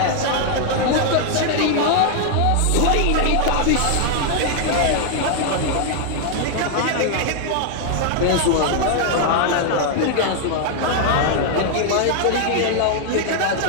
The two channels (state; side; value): different; both; correlation 0.00